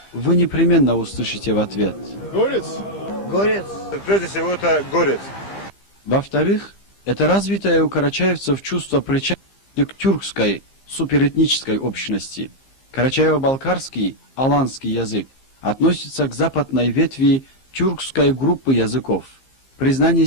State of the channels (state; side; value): late; right; 15 ms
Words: вы непременно услышите в ответ: горец. Горец. Прежде всего, это горец. Во-вторых, это развитое у карачаевцев чувство причастности к тюркской суперэтнической общности. Карачаево-балкарский, аланский язык относится к западной ветви тюркской группы языков. Признание